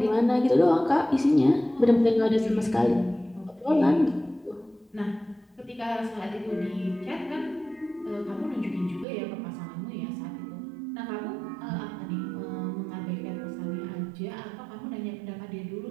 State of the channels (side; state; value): left; drops out; at 9.1 s